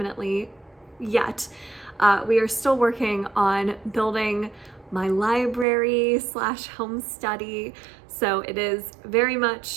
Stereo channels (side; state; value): left; drops out; at 5.7 s